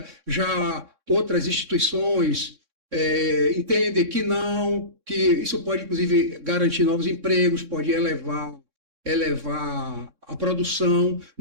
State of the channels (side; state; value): left; late; 3.6 ms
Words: já outras instituições entendem que não, que isso pode, inclusive, garantir novos empregos, pode elevar a produção,